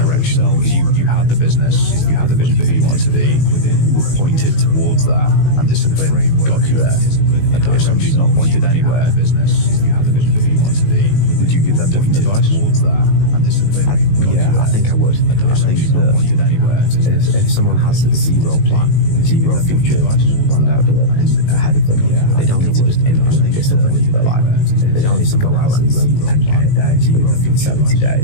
You had the business, you had the vision of who you wanted to be, were pointed towards that, and discipline got you there. If somebody's not pointed anywhere, you had the vision of who you wanted to be, would you give them different advice towards that, and discipline got you there? I think I would. I think that if someone has zero plan, zero future planned out and ahead of them, they don't need to just implement discipline into their life. They don't need to go out and run 10K a day, zero for 70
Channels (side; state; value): right; late; 19 ms